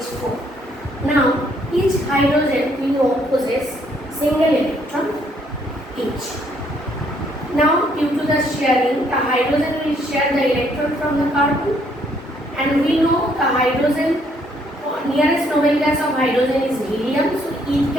Now each hydrogen we know possess single electron each. Now due to the sharing, the hydrogen will share the electron from the carbon, and we know the hydrogen, nearest noble gas of hydrogen is helium, so it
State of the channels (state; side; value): normal; both; correlation 0.68